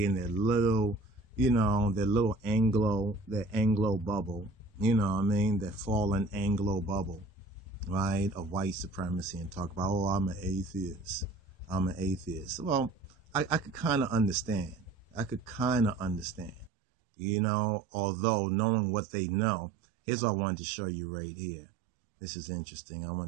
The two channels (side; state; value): left; drops out; at 16.7 s